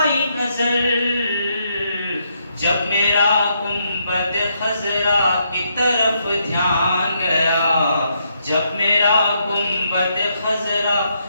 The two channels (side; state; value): both; inverted; correlation -0.77